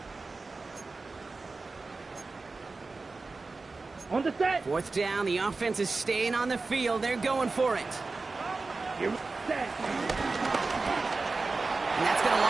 On the set. 4th down, the offense is staying on the field. They're going for it. Here we set. And that's going to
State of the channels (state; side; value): quieter; left; 3.8 dB